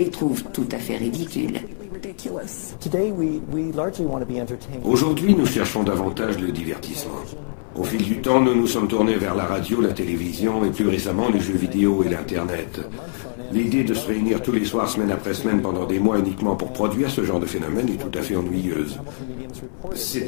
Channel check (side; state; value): right; silent; digital silence